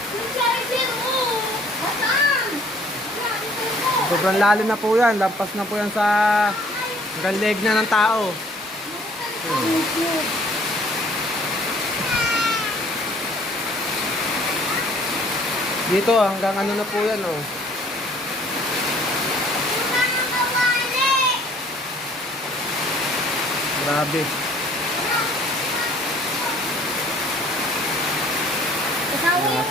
Sobrang lalim na po yan. Lampas na po yan sa hanggang leg na ng tao. Dito hanggang ano na po yan, oh. Grabe.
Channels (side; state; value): both; normal; correlation 0.57